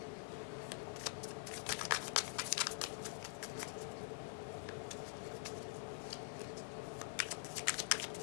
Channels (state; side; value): silent; right; digital silence